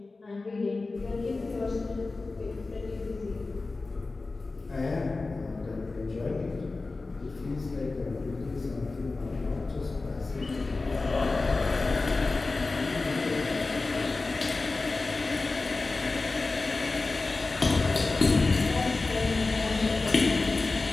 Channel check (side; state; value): right; quieter; 3.6 dB